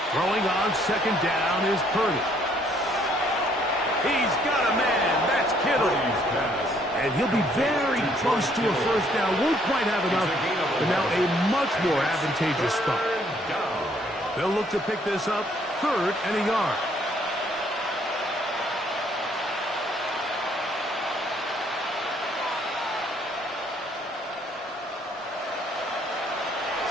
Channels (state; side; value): normal; both; correlation 0.65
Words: Throwing on second down is Purdy. He's got a man. That's Kittle. And he'll be very close to a first down. Won't quite have enough, but now a much more advantageous spot. They'll look to pick this up, 3rd and a yard.